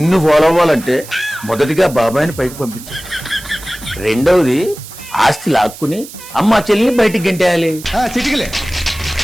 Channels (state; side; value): noise; right; hiss, 16 dB below the sound